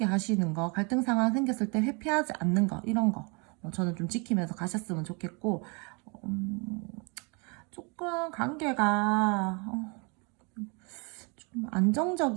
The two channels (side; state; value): left; quieter; 32.4 dB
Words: 하시는 거, 갈등 상황 생겼을 때 회피하지 않는 거, 이런 거, 저는 좀 지키면서 가셨으면 좋겠고, 조금 관계가, 좀